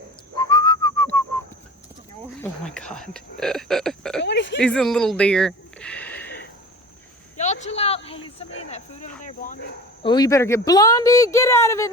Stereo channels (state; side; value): normal; both; correlation 0.38